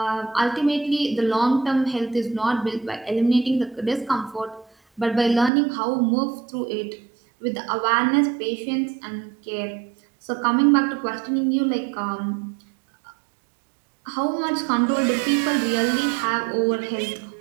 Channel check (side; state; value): left; drops out; at 5.5 s